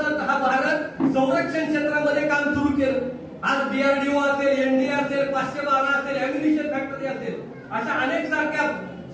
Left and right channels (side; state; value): both; identical; correlation 1.00